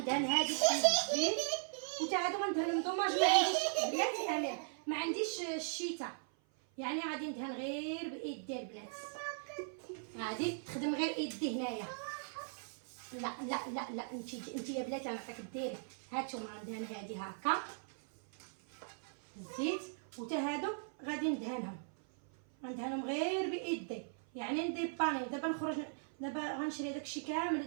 هادي بالزيت. وتا هادو غندهنهم دوماج. ما عنديش بلاتي امير، ما عنديش الشيتا، يعني غادي ندهن غير بايدي البنات. غادي تخدم غير ايدي هنايا. لا انت يا بلاتي غنعطيك ديري. هانتوما غندهن هادي هكا الزيت. وتا هادو غادي ندهنهم غير بايدي، يعني ندير باني. دابا نخرج دابا غنشري داكشي كامل،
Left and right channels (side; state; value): left; silent; 52 dB below the other